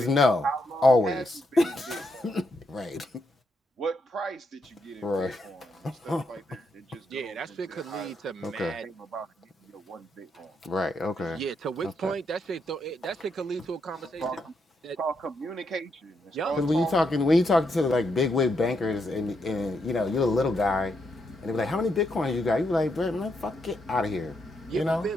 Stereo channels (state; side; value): normal; both; correlation 0.80